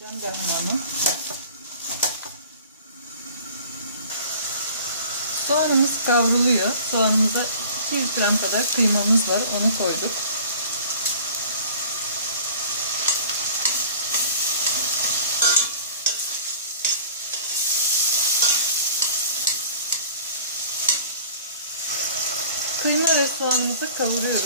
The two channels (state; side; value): inverted; both; correlation -0.46